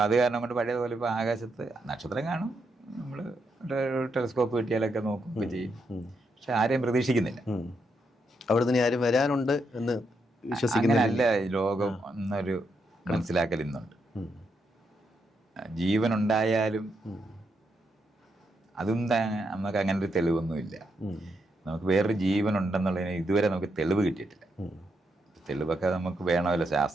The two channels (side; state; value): both; normal; correlation 0.80